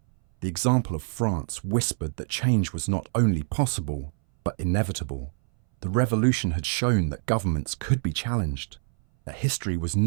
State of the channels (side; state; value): left; silent; 60 dB below the other